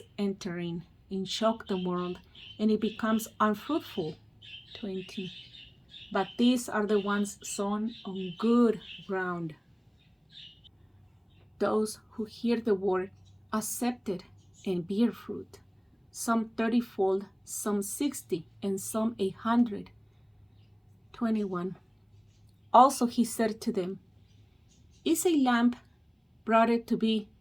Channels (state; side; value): identical; both; correlation 1.00